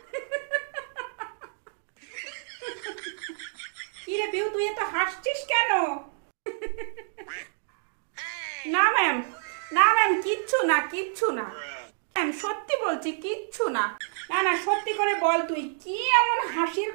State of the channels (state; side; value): silent; left; digital silence